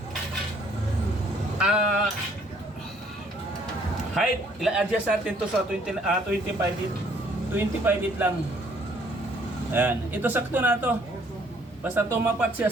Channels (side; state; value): both; normal; correlation 0.62